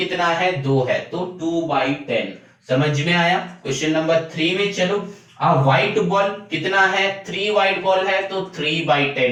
है? 2 है, तो 2/10। समझ में आया? क्वेश्चन नंबर 3 में चलो, आ व्हाइट बॉल कितना है? 3 व्हाइट बॉल है, तो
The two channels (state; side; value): identical; both; correlation 1.00